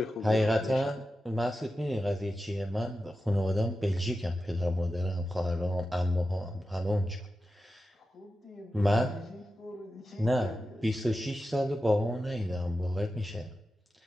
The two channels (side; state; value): both; normal; correlation 0.92